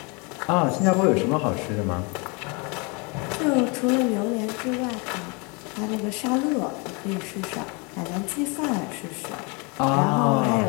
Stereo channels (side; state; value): right; quieter; 30.8 dB